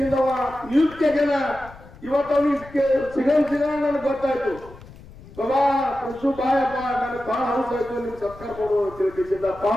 ನಿಯುಕ್ತಿ ಆಗ್ಯಾನ. ಇವತ್ತು ಅವನಿಗೆ ಸಿಗಣ ನನಗೆ ಗೊತ್ತಾಯ್ತು, ಬಾಬಾ ಕೃಷಿ ಬಾಯಪ್ಪ ನನಗೆ ಬಹಳ ಹೌಸ್ ಆಯ್ತು, ನಿಮ್ಗೆ ಸತ್ಕಾರ ಕೊಡುವ ತಿಳ್ಕಿಸಿದ್ದ.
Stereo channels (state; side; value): noise; left; rumble, 19 dB below the sound